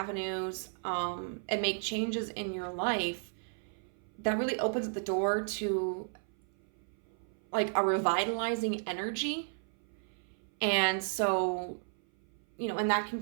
and make changes in your life, that really opens the door to like a revitalizing energy. And so, you know, and that can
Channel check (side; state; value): left; silent; 55 dB below the other